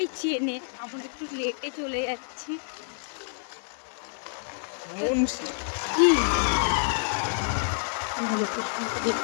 চেনে, আমরা একটু লেটে চলে যাচ্ছি। কি লোকেশনটা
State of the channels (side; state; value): right; silent; digital silence